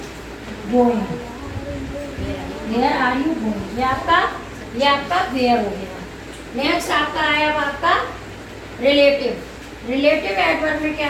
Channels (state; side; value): identical; both; correlation 1.00